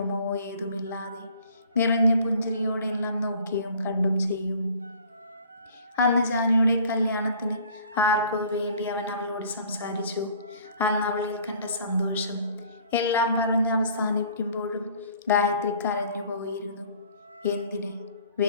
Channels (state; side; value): inverted; both; correlation -0.52